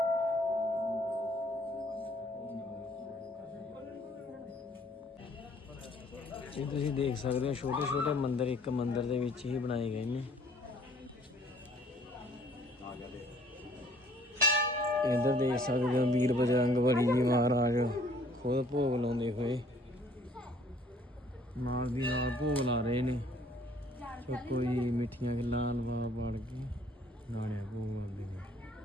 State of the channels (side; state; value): both; normal; correlation 0.58